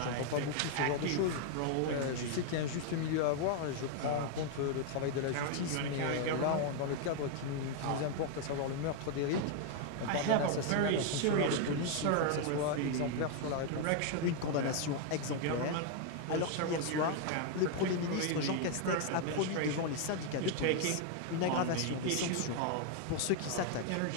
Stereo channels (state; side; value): different; both; correlation 0.00